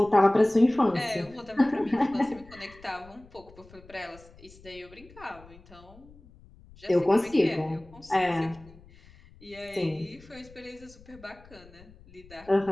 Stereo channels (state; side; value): noise; left; rumble, 23 dB below the sound